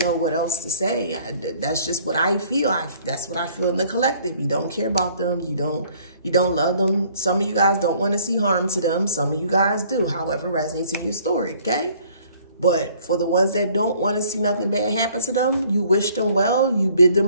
know what else to say. That's just what I feel. That's what I feel in the collective. You don't care about them. You don't love them. Some of you guys don't want to see harm to them. Some of you guys do, however resonates in your story, okay? But for the ones that don't want to see nothing bad happen to them, you wish them well, you bid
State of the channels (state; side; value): inverted; both; correlation -0.58